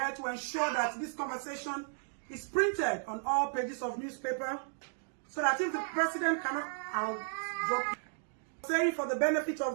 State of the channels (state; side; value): silent; left; digital silence